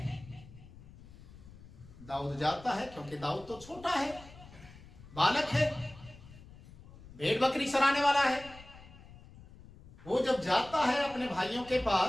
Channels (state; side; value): noise; left; rumble, 19 dB below the sound